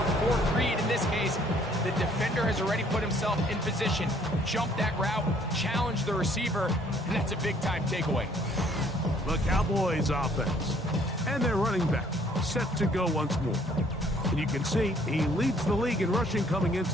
4th read, in this case, the defender has already put himself in position, jumped that route, challenged the receiver, and that's a big-time takeaway. The Cowboys offense and their running back set to go once more. And you can see he leads the league in rushing coming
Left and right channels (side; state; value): both; normal; correlation 0.62